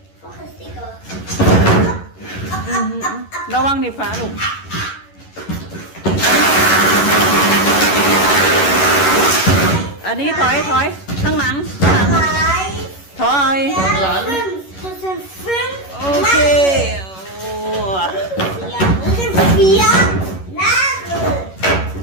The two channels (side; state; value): right; late; 11 ms